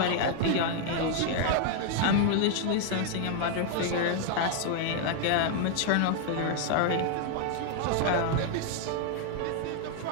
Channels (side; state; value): both; different; correlation 0.00